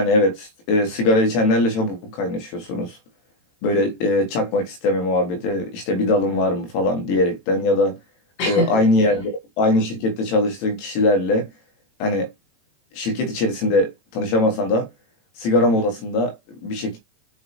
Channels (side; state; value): right; late; 18 ms